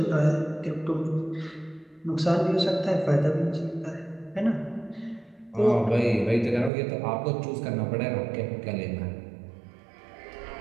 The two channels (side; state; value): left; drops out; at 6.7 s